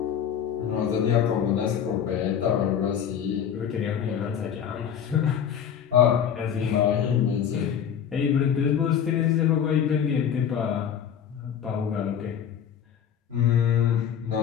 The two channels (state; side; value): quieter; right; 8.6 dB